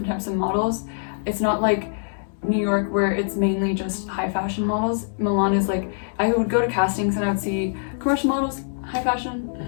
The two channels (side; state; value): right; silent; digital silence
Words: types of models. It's not like New York where it's mainly just high fashion models. Milan is like, I would go to castings and I would see commercial models, high fashion,